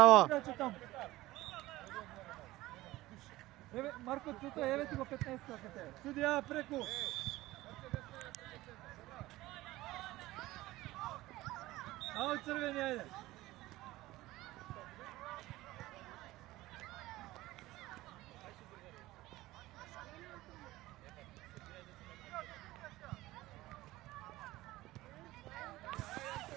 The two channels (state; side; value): quieter; left; 17.8 dB